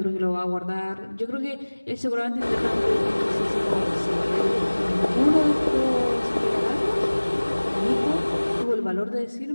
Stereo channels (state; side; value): inverted; both; correlation -1.00